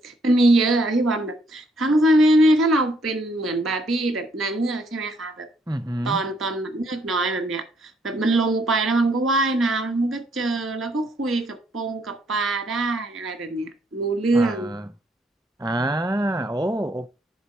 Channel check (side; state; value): both; normal; correlation 0.70